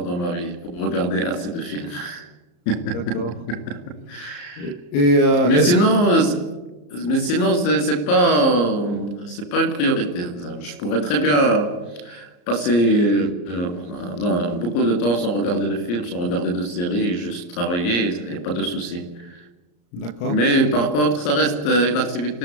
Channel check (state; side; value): late; right; 34 ms